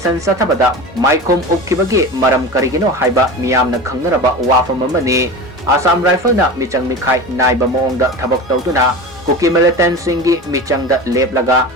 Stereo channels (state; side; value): normal; both; correlation 0.30